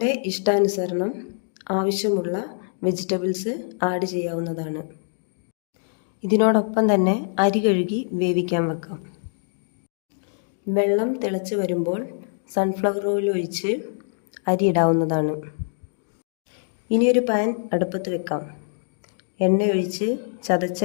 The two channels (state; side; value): silent; right; digital silence